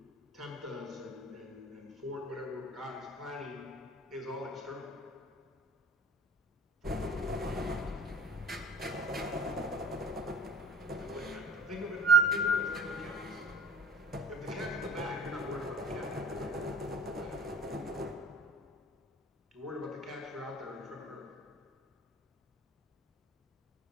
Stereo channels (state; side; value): normal; both; correlation 0.45